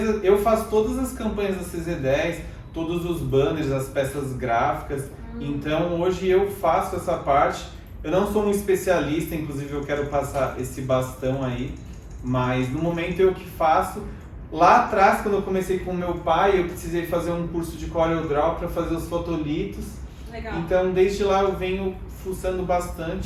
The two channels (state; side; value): identical; both; correlation 1.00